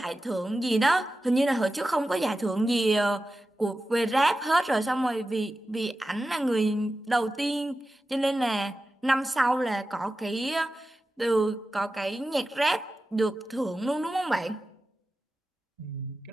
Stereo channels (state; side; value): normal; both; correlation 0.93